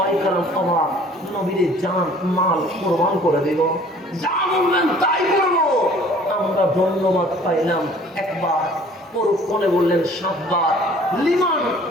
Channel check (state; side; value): normal; both; correlation 0.52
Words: কেরাম অবাক, নবীর জান মাল কোরবান করে দেব, যা বলবেন তাই করবো। আমরা ধন্যবাদ পাইলাম একবার, পরক্ষণে বললেন 7 বার। লিমান